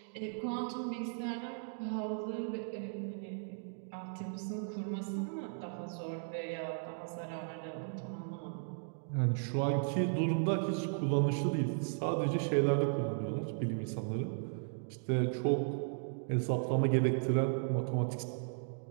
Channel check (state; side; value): silent; left; digital silence